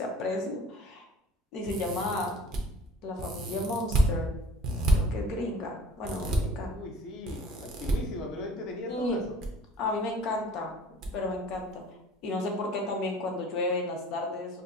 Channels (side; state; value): both; normal; correlation 0.48